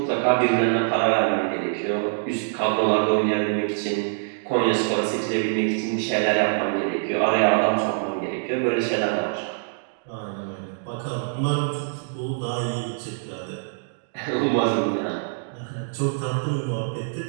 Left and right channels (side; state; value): left; silent; digital silence